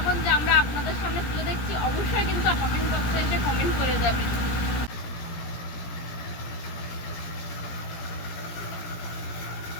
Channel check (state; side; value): late; right; 17 ms